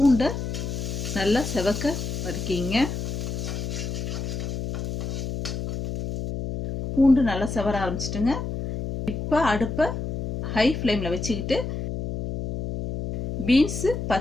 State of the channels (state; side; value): noise; left; hum, 4 dB below the sound